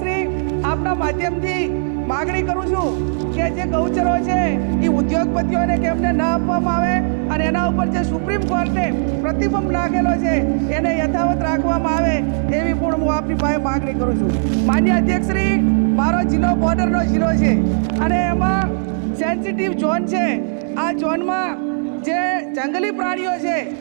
આપના માધ્યમથી માગણી કરું છું કે જે ગૌચરો છે એ ઉદ્યોગપતિઓને કેમને ન આપવામાં આવે અને એના ઉપર જે સુપ્રીમ કોર્ટે પ્રતિબંધ નાખેલો છે એને યથાવત રાખવામાં આવે એવી પણ હું આપની પાસે માગણી કરું છું. માન્ય અધ્યક્ષશ્રી, મારો જિલ્લો બોર્ડરનો જિલ્લો છે અને એમાં સેન્સિટિવ ઝોન છે. આ ઝોનમાં જે જંગલી પ્રાણીઓ છે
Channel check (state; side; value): silent; left; digital silence